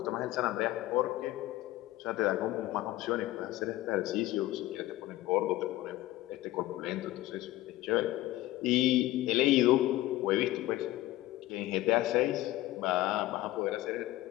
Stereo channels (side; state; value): right; quieter; 16.6 dB